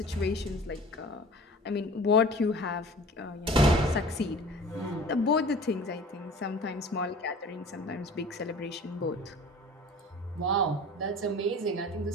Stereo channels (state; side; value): normal; both; correlation 0.43